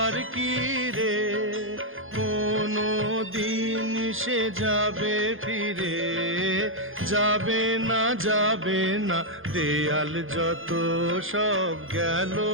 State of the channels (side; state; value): left; late; 0.59 ms